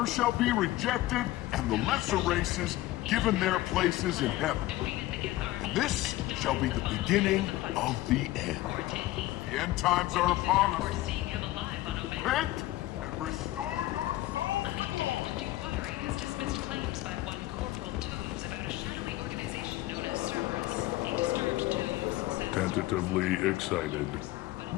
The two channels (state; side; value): quieter; right; 17.0 dB